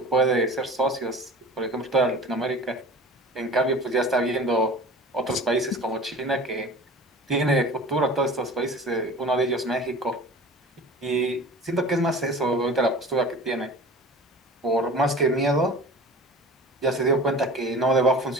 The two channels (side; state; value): both; normal; correlation 0.39